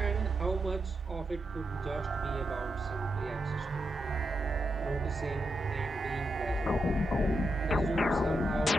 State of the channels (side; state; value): both; normal; correlation 0.85